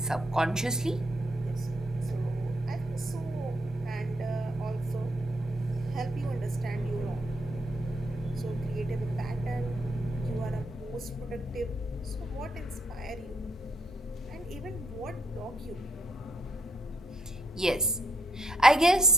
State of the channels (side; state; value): both; normal; correlation 0.74